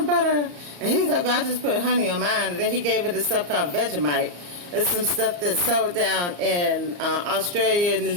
butter. And he was like, well, I just put honey on mine. And then he gave her this stuff called Vegemite. It's some stuff that's sold down in Australia, New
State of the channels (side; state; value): left; late; 34 ms